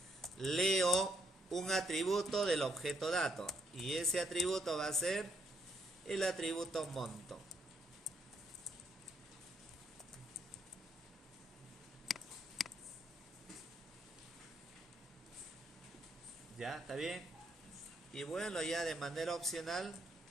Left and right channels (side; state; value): both; normal; correlation 0.73